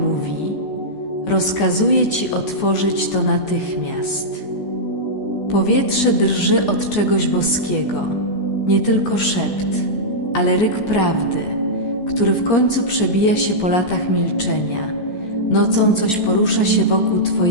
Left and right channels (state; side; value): late; right; 14 ms